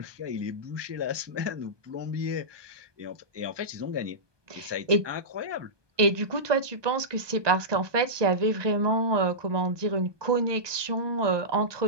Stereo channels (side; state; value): left; late; 1.2 ms